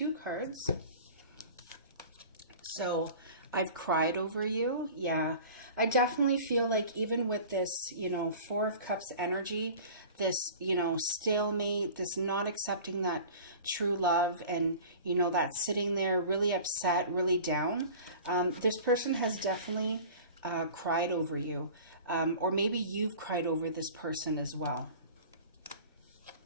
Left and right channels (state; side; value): inverted; both; correlation -0.41